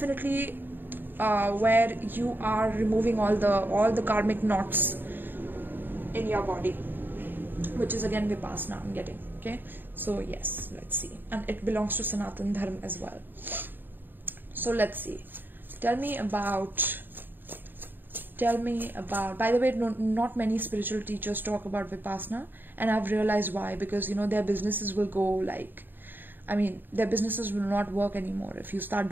where you are removing all the karmic knots in your body, which is again Vipassana I'm getting. Okay, so yes, let's see, and it belongs to Sanatan Dharma as well. So let's see. Tell me about, by the way, not many spiritual teachers talk about Vipassana, and I've realized why. Because their businesses will go like, their businesses will not work anymore if you start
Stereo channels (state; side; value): late; left; 0.093 ms